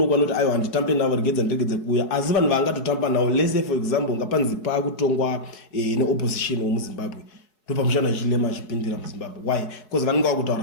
kwanoti aiwa handitambe navo regedza ndiregedze kuuya, asi vanhu vangatotamba nawo lese for example ngapanzi pakutongwa neopposition womuZimbabwe ndo pamushana Hichilema achipindira muZimbabwe. Why? Because vanenge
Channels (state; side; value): late; right; 4.7 ms